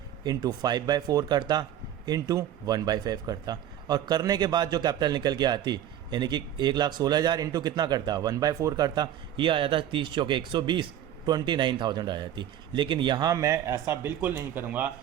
इंटू 5/4 करता, इंटू 1/5 करता, और करने के बाद जो कैपिटल निकल के आती, यानी कि 1,16,000 इंटू कितना करता, 1/4 करता, ये आ जाता 30 चौके 120, 29,000 आ जाती। लेकिन यहाँ मैं ऐसा बिल्कुल नहीं करूँगा,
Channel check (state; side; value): quieter; left; 11.1 dB